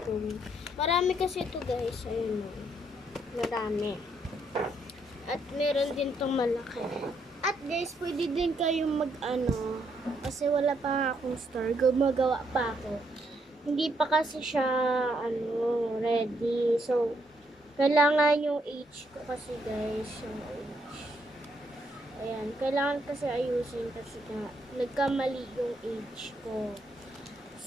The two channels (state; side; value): normal; both; correlation 0.74